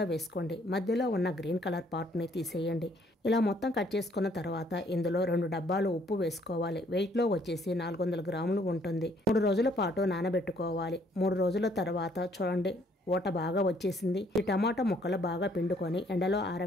వేసుకోండి. మధ్యలో ఉన్న గ్రీన్ కలర్ పార్ట్ని తీసేయండి. ఇలా మొత్తం కట్ చేసుకున్న తర్వాత ఇందులో 2 డబ్బాలు ఉప్పు వేసుకోవాలి. వెయిట్లో వచ్చేసి 400 గ్రాములు ఉంటుంది. 3 రోజుల పాటు నానబెట్టుకోవాలి. 3 రోజుల తర్వాత చూడండి ఊట బాగా వచ్చేసింది. ఈ టమాటా ముక్కలు బాగా పిండుకొని ఎండలో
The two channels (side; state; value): both; normal; correlation 0.64